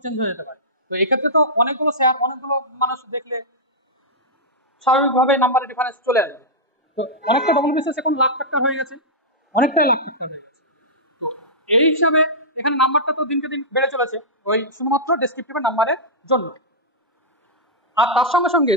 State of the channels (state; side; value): normal; both; correlation -0.12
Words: চেঞ্জ হয়ে যেতে পারে। তো এক্ষেত্রে তো অনেকগুলো মানুষ দেখলে স্বাভাবিকভাবে নাম্বারের ডিফারেন্স চলে আসবে। তো অনেকটা ডবল বিসিএস এখন লাখ ফ্যাক্টর হয়ে গেছে, অনেকটাই লাখ ফ্যাক্টর হয়ে গেছে। তো এই হিসাবে এখানে নাম্বারটা তো দিনকে দিন বেড়ে চলেছে ওই শুধুমাত্র ডেসক্রিপটিভের নাম্বারের জন্য। আর তার সঙ্গে সঙ্গে